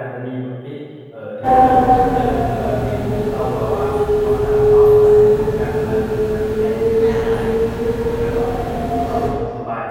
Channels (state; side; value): identical; both; correlation 1.00